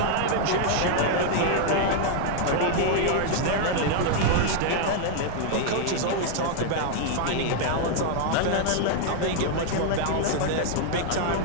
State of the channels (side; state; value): both; different; correlation 0.00